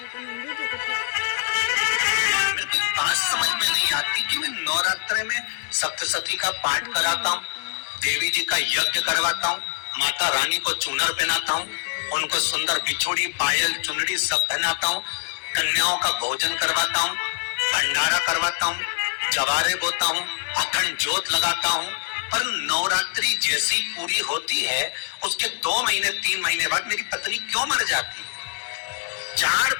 मेरे को बात समझ में नहीं आती कि मैं नवरात्रे में सप्तशती का पाठ कराता हूँ, देवी जी का यज्ञ करवाता हूँ, माता रानी को चूनर पहनाता हूँ, उनको सुंदर बिछोड़ी, पायल, चुनरी सब पहनाता हूँ, कन्याओं का भोजन करवाता हूँ, भंडारा करवाता हूँ, जवारे बोता हूँ, अखंड ज्योत लगाता हूँ, पर नवरात्रि जैसी पूरी होती है उसके 2 महीने 3 महीने बाद मेरी पत्नी क्यों मर जाती है? 4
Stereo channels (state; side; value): silent; right; 63 dB below the other